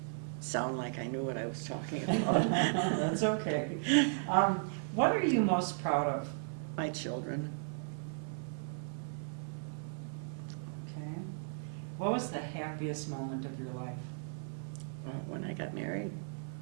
sound like I knew what I was talking about. That's okay. What are you most proud of? My children. Okay. What was the happiest moment of your life? When I got married.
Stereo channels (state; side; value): silent; left; 54 dB below the other